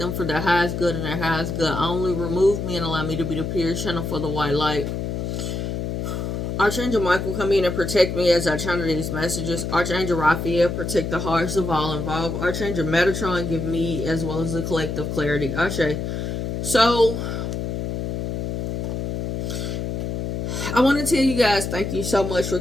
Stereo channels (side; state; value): left; noise; hum, 3 dB below the sound